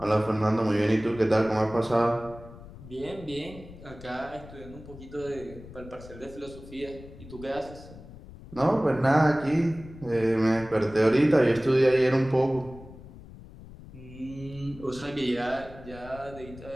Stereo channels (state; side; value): noise; left; rumble, 17 dB below the sound